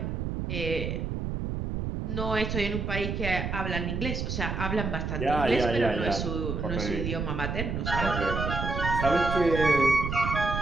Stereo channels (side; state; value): right; noise; rumble, 3 dB below the sound